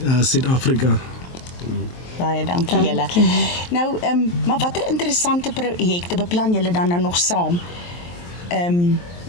Suid-Afrika. Baie dankie julle. Nou, maar watter interessante projekte beplan julle dan nou nog saam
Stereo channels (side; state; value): right; late; 23 ms